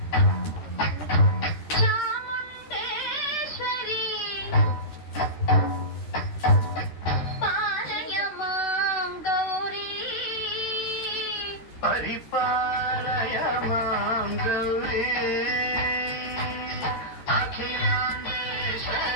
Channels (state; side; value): late; right; 13 ms